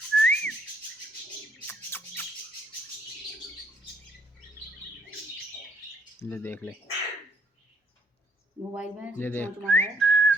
ले देख ले। मोबाइल में ये देख। चोंच मारा है।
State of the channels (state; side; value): normal; both; correlation 0.69